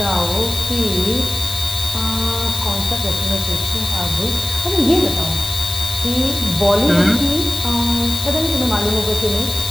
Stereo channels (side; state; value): left; noise; hiss, 7 dB below the sound